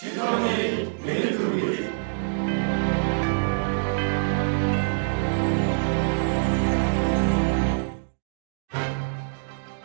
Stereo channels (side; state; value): left; silent; digital silence